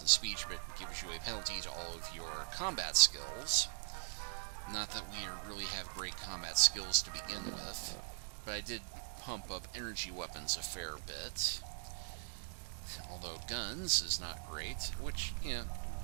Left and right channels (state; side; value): silent; left; 51 dB below the other